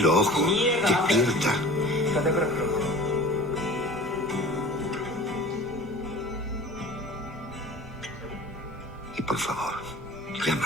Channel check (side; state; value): both; normal; correlation 0.40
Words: ojos. Despierta. Y por favor,